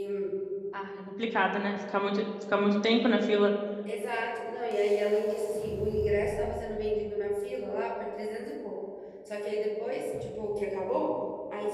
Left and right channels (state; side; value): identical; both; correlation 1.00